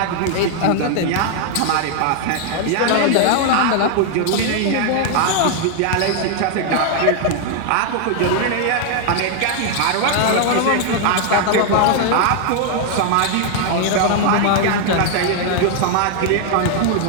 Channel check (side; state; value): both; different; correlation 0.00